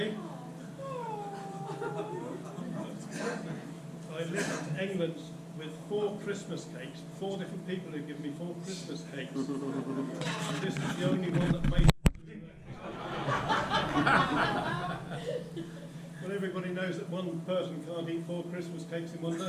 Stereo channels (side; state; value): both; identical; correlation 1.00